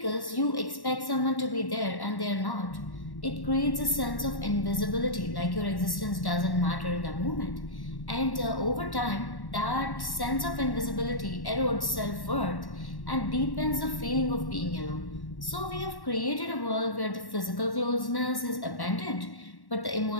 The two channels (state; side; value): late; right; 1.1 ms